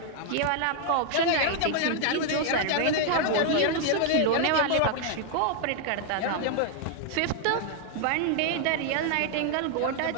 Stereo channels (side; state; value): both; different; correlation 0.00